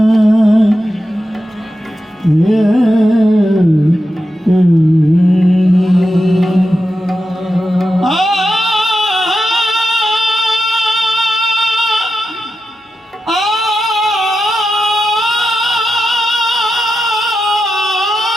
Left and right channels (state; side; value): normal; both; correlation 0.89